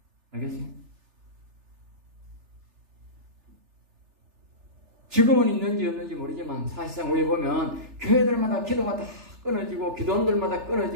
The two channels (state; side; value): late; left; 3.4 ms